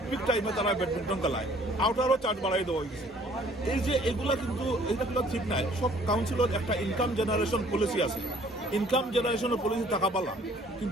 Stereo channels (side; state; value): both; normal; correlation 0.57